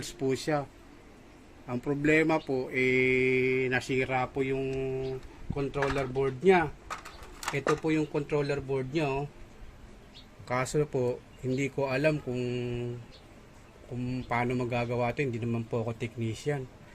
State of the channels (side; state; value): both; identical; correlation 1.00